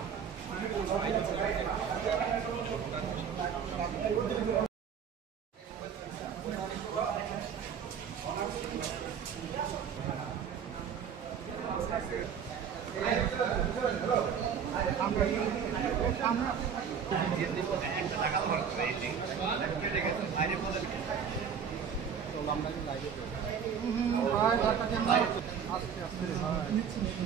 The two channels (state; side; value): quieter; left; 7.4 dB